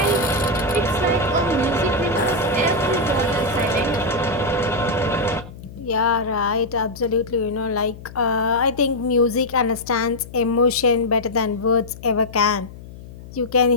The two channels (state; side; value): noise; left; hum, 16 dB below the sound